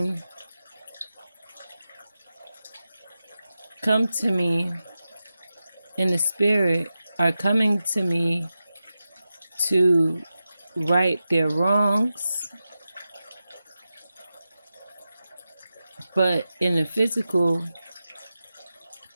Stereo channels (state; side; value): inverted; both; correlation -0.92